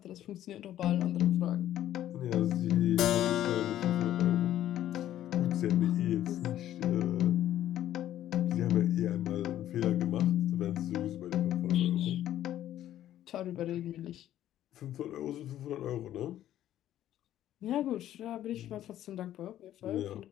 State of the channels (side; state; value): right; quieter; 12.3 dB